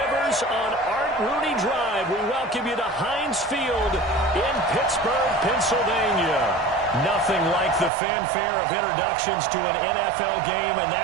on Art Rooney Drive, we welcome you to Heinz Field in Pittsburgh, Pennsylvania. Nothing like the fanfare of introductions to an NFL game, and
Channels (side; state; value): left; drops out; at 7.9 s